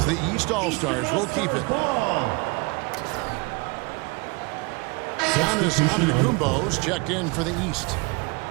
The East All-Stars will keep it. Giannis Antetokounmpo's checked in for the East.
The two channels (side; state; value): left; quieter; 27.8 dB